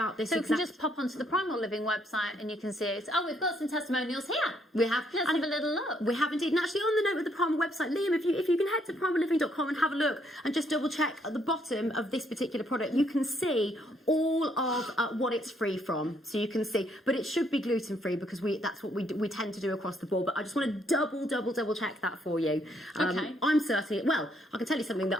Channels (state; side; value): normal; both; correlation 0.71